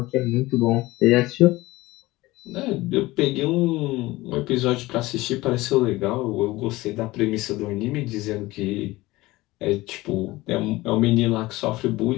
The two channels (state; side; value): quieter; right; 19.4 dB